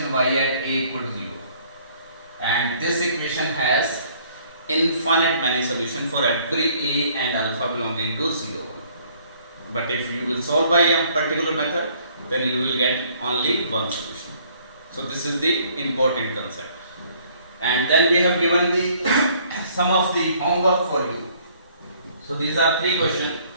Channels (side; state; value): both; inverted; correlation -0.61